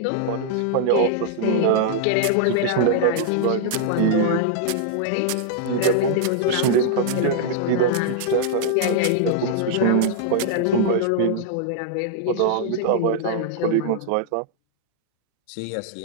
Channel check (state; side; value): different; both; correlation -0.01